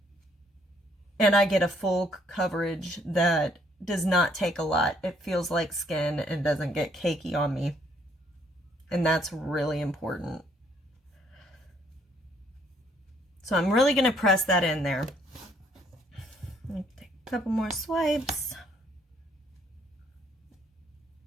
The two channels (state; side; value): normal; both; correlation 0.66